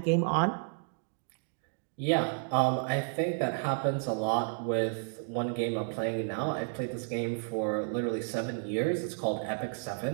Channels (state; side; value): silent; left; 57 dB below the other